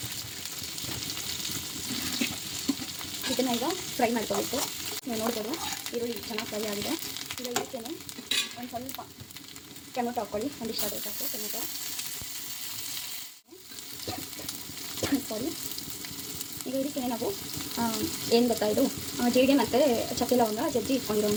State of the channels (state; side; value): identical; both; correlation 1.00